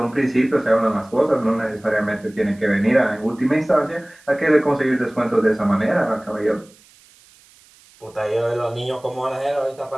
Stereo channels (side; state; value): right; noise; hiss, 28 dB below the sound